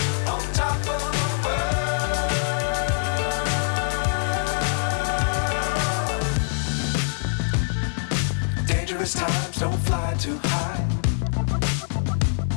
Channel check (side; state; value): right; silent; digital silence